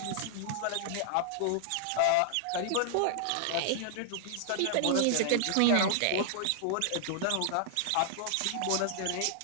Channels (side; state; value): both; different; correlation -0.01